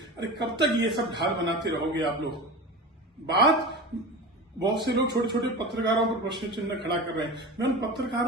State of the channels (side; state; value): both; normal; correlation 0.29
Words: अरे कब तक ये सब ढाल बनाते रहोगे आप लोग? बात बहुत से लोग छोटे छोटे पत्रकारों पर प्रश्न चिन्ह खड़ा कर रहे हैं। मैं उन